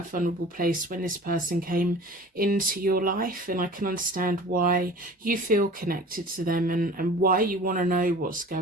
a vulnerable place when this person came into your life, and I can understand why you feel connected to them and why you want to know what's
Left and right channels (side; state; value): both; normal; correlation 0.42